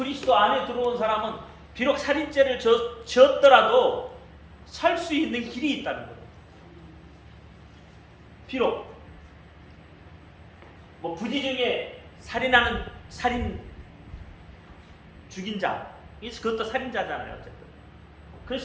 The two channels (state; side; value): identical; both; correlation 1.00